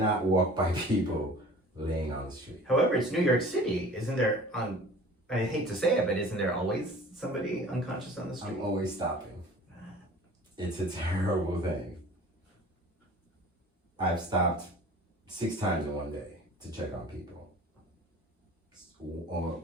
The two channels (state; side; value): normal; both; correlation 0.45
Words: walk by people laying on the street. However, it's New York City. Isn't there I hate to say it, but isn't there always somebody unconscious on the street? I'm always stopping. It's a terrible thing. I've stopped 6 times in one day to check on people. Or